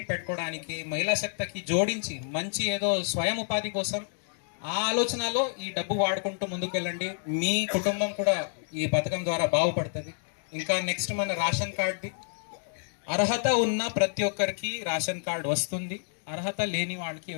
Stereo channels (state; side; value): silent; right; digital silence